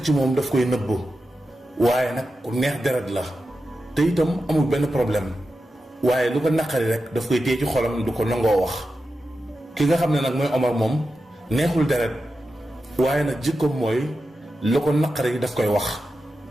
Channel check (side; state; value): both; normal; correlation 0.90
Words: ci moom daf koy nëbb waaye nag ku neex deret la te itam amul benn problème waaye lu ko naqari rek daf koy téye ci xolam du ko nangoo wax ki nga xam ne nag mooy Omar moom neexul deret waaye nag jikkoom mooy lu ko naqari daf koy wax